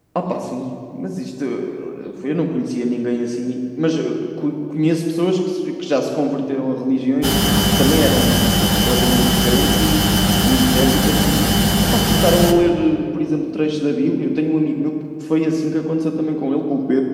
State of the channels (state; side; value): identical; both; correlation 1.00